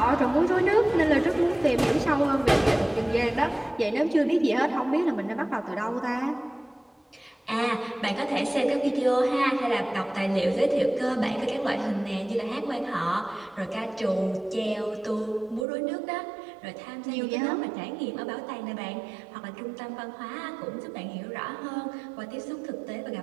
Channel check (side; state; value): left; drops out; at 15.7 s